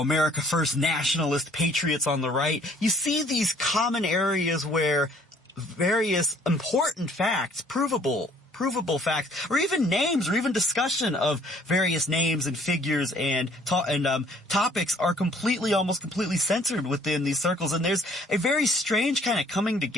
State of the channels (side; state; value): both; normal; correlation 0.59